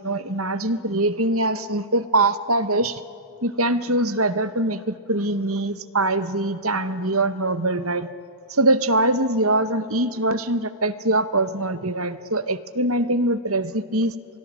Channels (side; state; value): both; normal; correlation -0.19